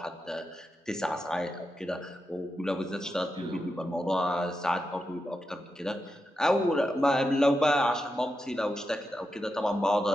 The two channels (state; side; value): normal; both; correlation 0.87